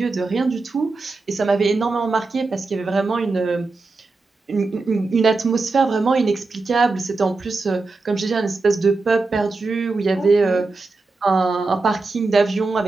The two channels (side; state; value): left; quieter; 3.7 dB